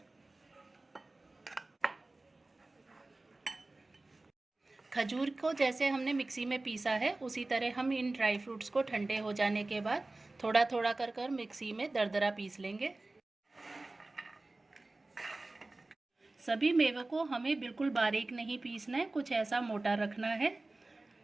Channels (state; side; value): quieter; left; 3.0 dB